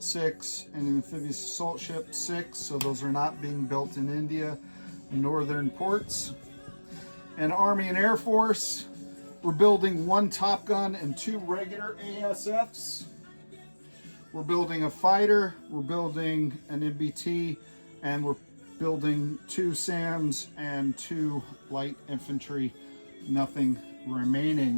6 and amphibious assault ship 6, so those are not being built in India, northern ports. And Army and Air Force, we're building 1 Top Gun and 2 regular ASFs. We're building a fighter, we're building an MBT, and we're building 2 SAMs and 2 light infantry, nothing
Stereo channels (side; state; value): both; inverted; correlation -1.00